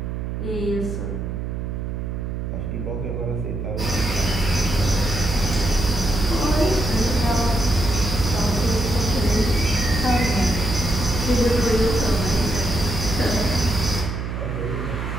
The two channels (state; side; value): noise; right; hum, 4 dB below the sound